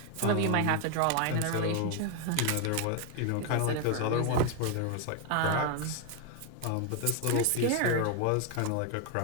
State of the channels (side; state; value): both; different; correlation 0.01